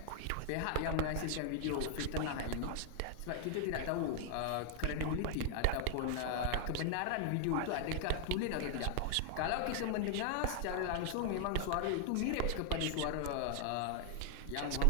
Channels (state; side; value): different; both; correlation 0.00